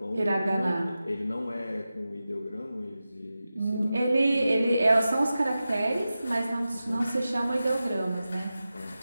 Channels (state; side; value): inverted; both; correlation -0.93